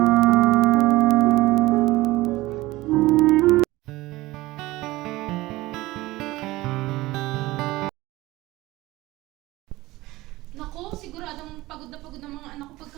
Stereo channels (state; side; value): quieter; left; 18.9 dB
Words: Nako, siguradong pagod ng mga anak ko